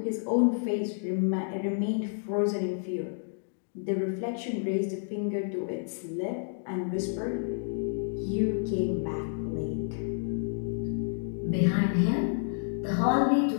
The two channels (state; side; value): silent; right; digital silence